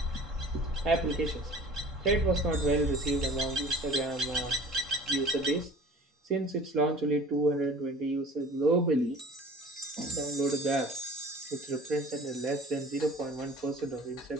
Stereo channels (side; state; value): both; normal; correlation 0.45